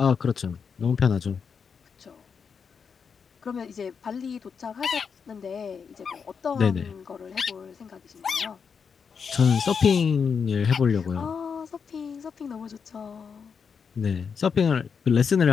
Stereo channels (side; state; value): right; quieter; 6.2 dB